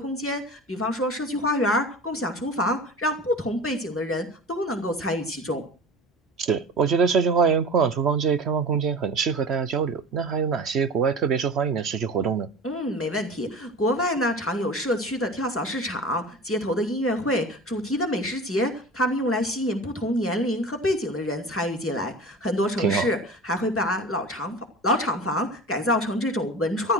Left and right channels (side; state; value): both; normal; correlation 0.35